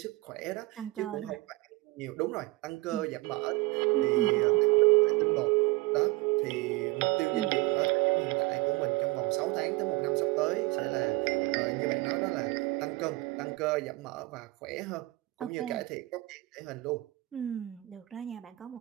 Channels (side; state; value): left; quieter; 21.6 dB